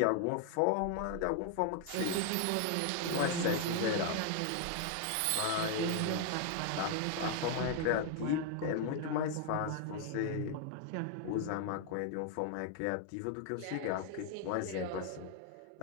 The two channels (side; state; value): both; different; correlation 0.00